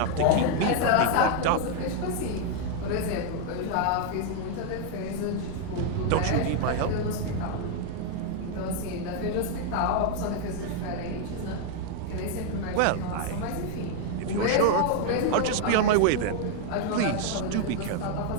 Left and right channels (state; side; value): different; both; correlation 0.00